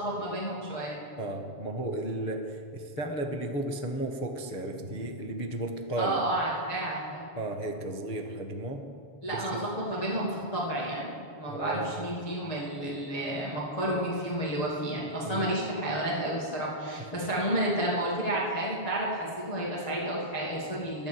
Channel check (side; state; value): right; late; 7.1 ms